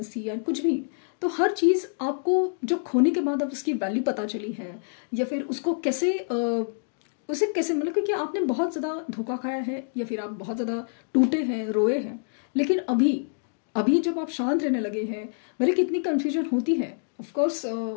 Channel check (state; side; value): silent; right; digital silence